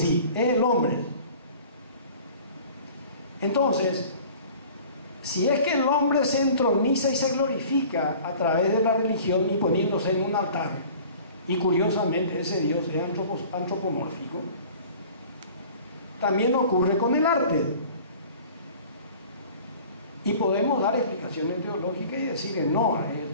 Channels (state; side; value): inverted; both; correlation -0.46